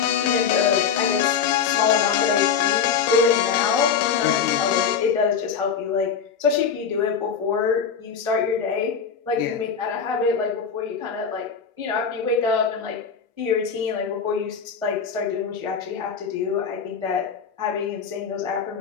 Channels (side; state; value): right; quieter; 6.7 dB